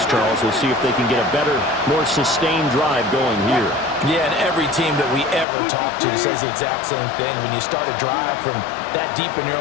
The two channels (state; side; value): drops out; right; at 5.5 s